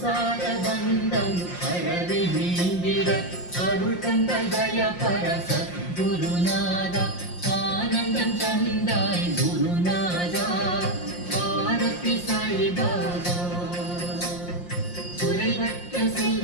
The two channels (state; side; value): late; right; 5.7 ms